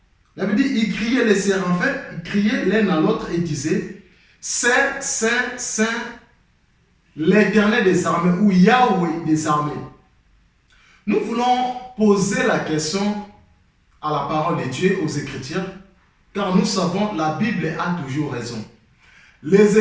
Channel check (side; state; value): both; identical; correlation 1.00